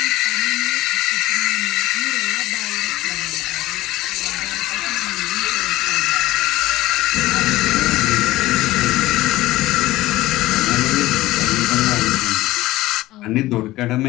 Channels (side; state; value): right; quieter; 17.2 dB